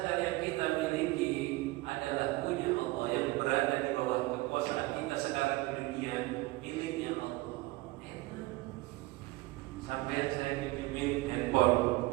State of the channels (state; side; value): quieter; left; 20.5 dB